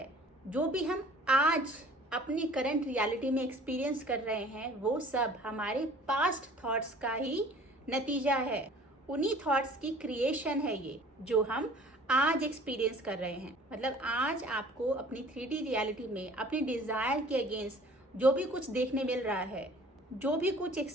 जो भी हम आज अपनी करंट रियलिटी में एक्सपीरियंस कर रहे हैं वो सब हमारे पास्ट थॉट्स का ही नतीजा है, उन्हीं थॉट्स की क्रिएशन है ये जो हम आज एक्सपीरियंस कर रहे हैं। मतलब आज आपको अपनी 3D रियलिटी में अपनी डिज़ायर के अगेंस्ट जो भी कुछ देखने मिल रहा है, जो भी कुछ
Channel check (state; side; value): normal; both; correlation 0.50